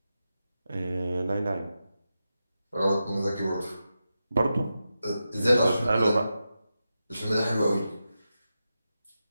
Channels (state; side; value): inverted; both; correlation -0.90